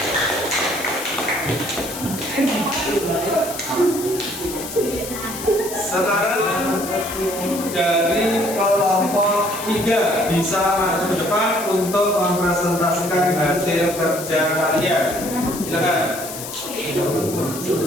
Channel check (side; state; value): left; noise; hiss, 9 dB below the sound